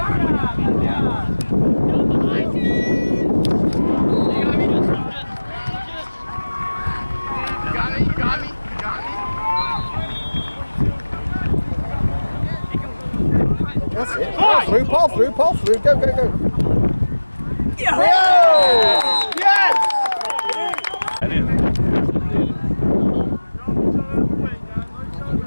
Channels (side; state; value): both; inverted; correlation -1.00